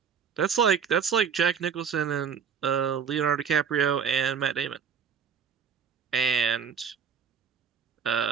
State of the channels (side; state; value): left; quieter; 7.0 dB